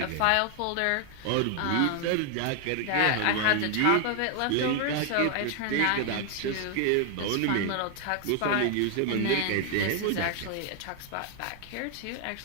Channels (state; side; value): different; both; correlation 0.00